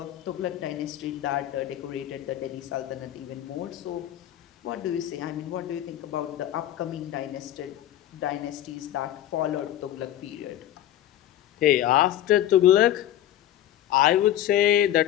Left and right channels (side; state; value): right; quieter; 12.4 dB